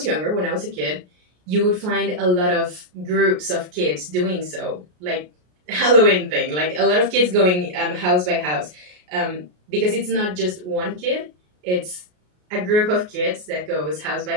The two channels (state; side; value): late; left; 33 ms